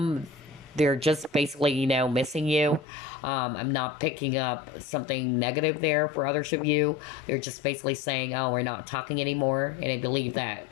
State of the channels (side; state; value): right; drops out; at 2.9 s